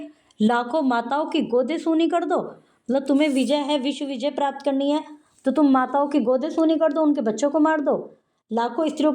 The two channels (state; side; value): identical; both; correlation 1.00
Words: लाखों माताओं की गोदे सूनी कर दो। मतलब तुम्हें विजय है, विश्व विजय प्राप्त करनी है, तो तुम माताओं की गोदे सूनी कर दो, उनके बच्चों को मार दो, लाखों स्त्रियों